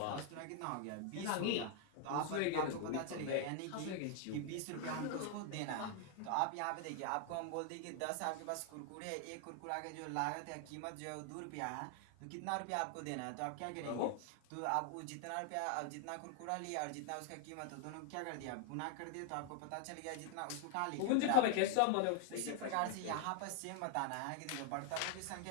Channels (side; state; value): both; different; correlation 0.00